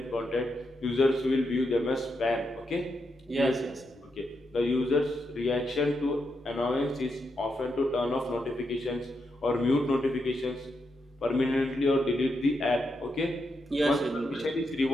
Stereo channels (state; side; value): normal; both; correlation 0.83